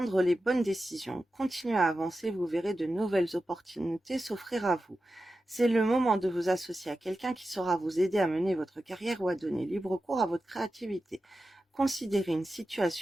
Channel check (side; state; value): both; normal; correlation 0.92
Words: les bonnes décisions. Continuez à avancer, vous verrez de nouvelles opportunités s'offrir à vous. C'est le moment de vous associer à quelqu'un qui saura vous aider à mener votre carrière ou à donner libre cours à votre créativité. Considérez une